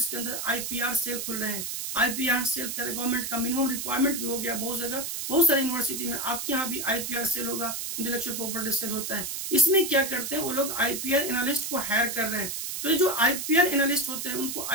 के अंदर आईपीआर सेल खुल रहे हैं। आईपीआर सेल कर गवर्नमेंट का मिनिमम रिक्वायरमेंट भी हो गया बहुत जगह, बहुत सारी यूनिवर्सिटी में। आपके यहाँ भी आईपीआर सेल होगा, इंटेलेक्चुअल प्रॉपर्टी सेल होता है। इसमें क्या करते हैं वो लोग आईपीआर एनालिस्ट को हायर कर रहे हैं। तो ये जो आईपीआर एनालिस्ट होते हैं उनको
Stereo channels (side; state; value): right; noise; hiss, 4 dB below the sound